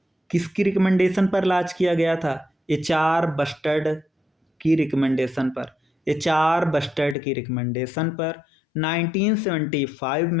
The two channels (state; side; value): drops out; right; at 7.2 s